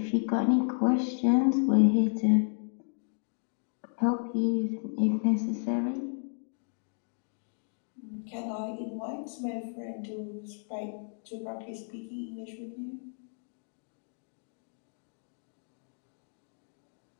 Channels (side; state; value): right; silent; 56 dB below the other